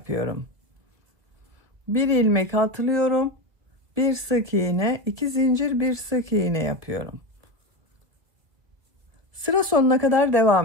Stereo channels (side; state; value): left; late; 2.2 ms